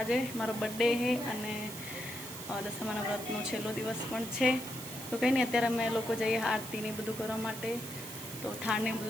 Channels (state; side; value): noise; right; hiss, 10 dB below the sound